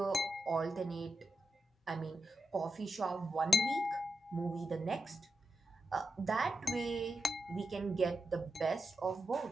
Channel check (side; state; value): both; normal; correlation 0.88